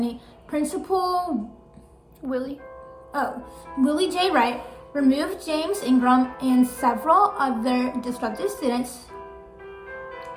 Principal Willie J. Wright removed James Ingrahm and several other disruptive students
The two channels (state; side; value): identical; both; correlation 1.00